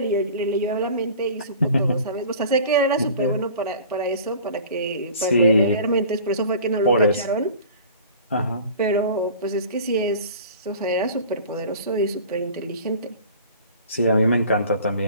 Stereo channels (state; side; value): inverted; both; correlation -0.43